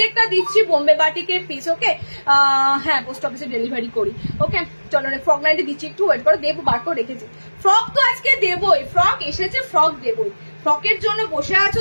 দিচ্ছি বোম্বে বাটিকের পিস। ওকে হ্যাঁ পোস্ট অফিসে ডেলিভারি করি। ওকে চলো ফ্রক নাইটে দিচ্ছি, একটু ওয়েট করো, দেবো বার করে রেখেছি। ফ্রক তো আজকে দেবই, ফ্রক এসেছে, ফ্রক দেবই। ফ্রকের জন্য বসে আছো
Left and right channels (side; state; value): both; inverted; correlation -1.00